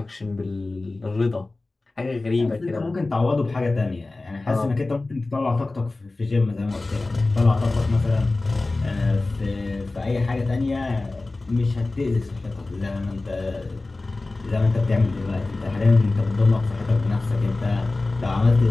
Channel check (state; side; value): quieter; right; 3.2 dB